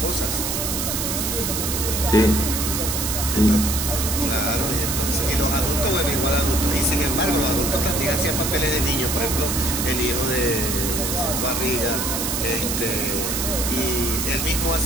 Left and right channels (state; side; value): noise; right; hiss, 1 dB below the sound